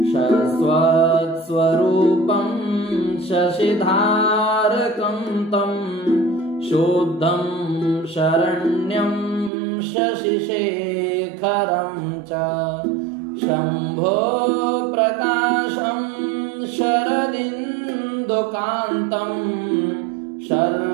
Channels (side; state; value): left; drops out; at 9.5 s